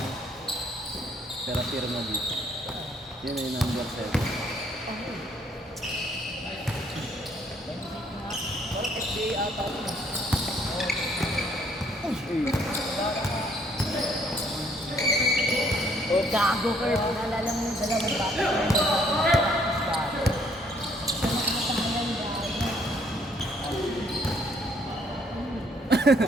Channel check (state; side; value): normal; both; correlation 0.65